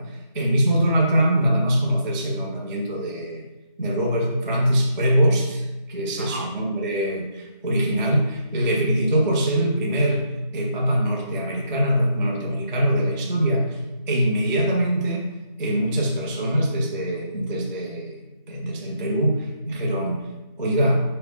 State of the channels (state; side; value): inverted; both; correlation -0.75